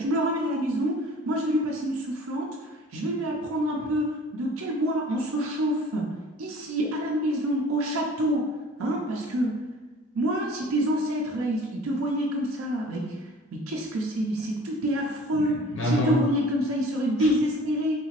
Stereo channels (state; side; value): normal; both; correlation 0.47